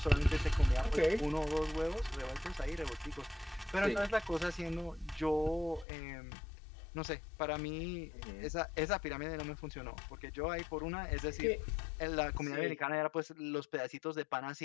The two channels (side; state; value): right; drops out; at 5.9 s